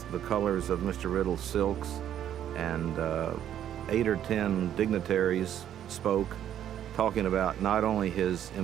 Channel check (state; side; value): quieter; left; 10.6 dB